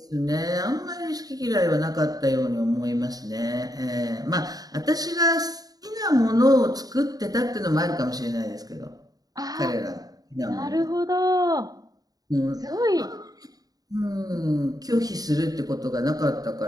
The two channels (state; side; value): late; left; 0.18 ms